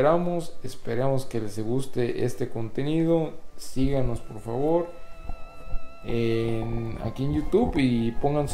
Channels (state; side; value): identical; both; correlation 1.00